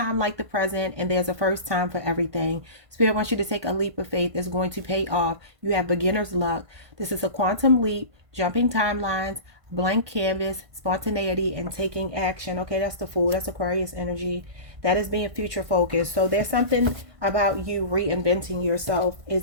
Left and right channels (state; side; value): late; left; 1.5 ms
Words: like the present, and there's a first time for everything. Spirit wants you to take a leap of faith that's going to pay off. You have beginner's luck. This is a quantum leap, jumping timelines, blank canvas, spontaneity, and taking action. Okay, that's the Fool. That's Aquarius energy. That is being future focused. So there's something about you reinventing yourself